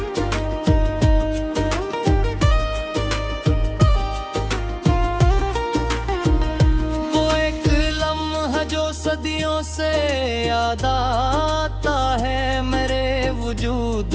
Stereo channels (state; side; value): identical; both; correlation 1.00